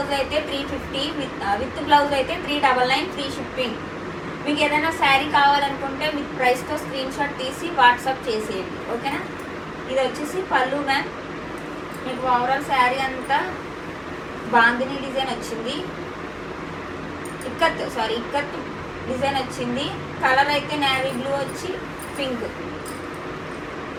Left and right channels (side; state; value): both; identical; correlation 1.00